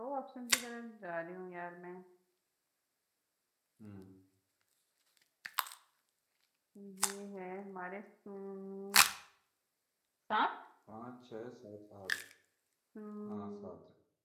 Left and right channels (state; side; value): identical; both; correlation 1.00